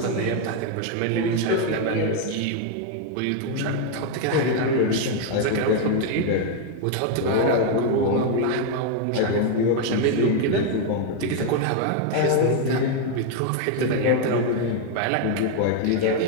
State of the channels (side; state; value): both; different; correlation 0.01